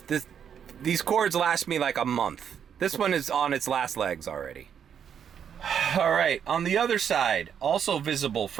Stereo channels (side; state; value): left; quieter; 8.2 dB